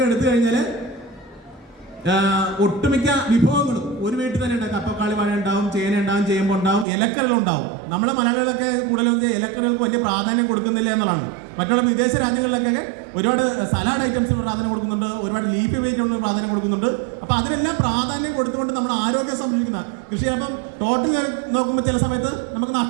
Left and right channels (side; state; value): left; drops out; at 6.9 s